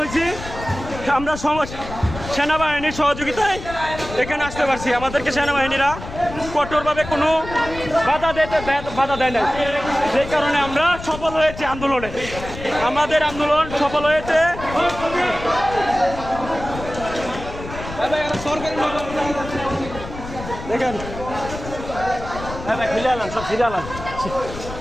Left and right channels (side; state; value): left; noise; rumble, 11 dB below the sound